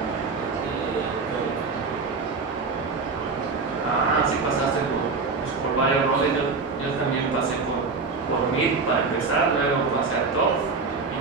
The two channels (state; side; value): quieter; left; 4.4 dB